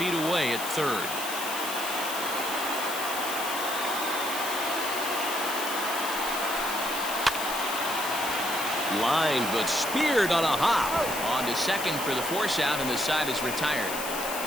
away at third. Line, but speared on a hop. On to second for the force out, and the side is retired.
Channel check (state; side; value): noise; left; hiss, 6 dB below the sound